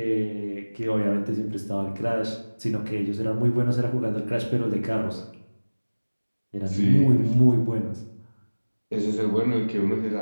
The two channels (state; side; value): inverted; both; correlation -1.00